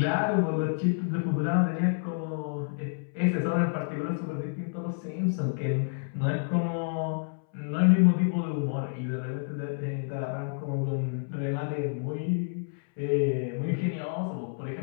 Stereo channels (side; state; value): right; silent; 59 dB below the other